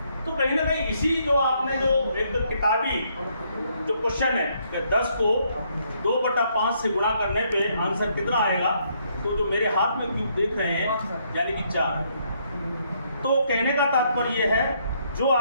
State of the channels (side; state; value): both; inverted; correlation -0.71